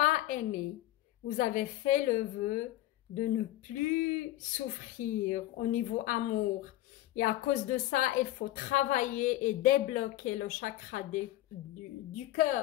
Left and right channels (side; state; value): right; quieter; 15.5 dB